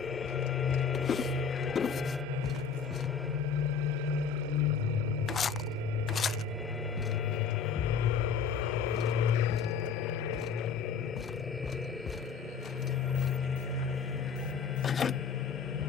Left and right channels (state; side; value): quieter; right; 6.2 dB